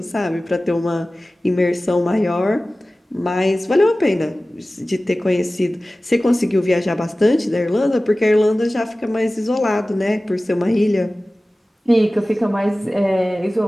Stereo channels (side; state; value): both; normal; correlation 0.97